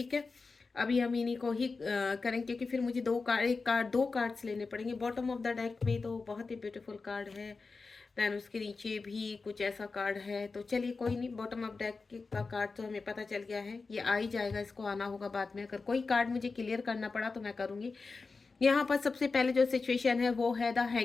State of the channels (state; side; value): quieter; right; 4.2 dB